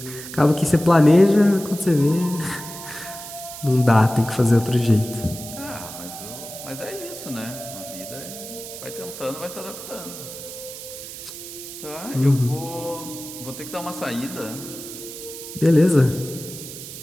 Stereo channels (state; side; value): noise; right; hiss, 11 dB below the sound